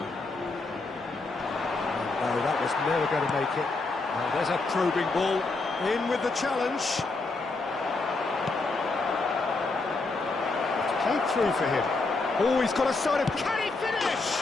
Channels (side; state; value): right; quieter; 3.5 dB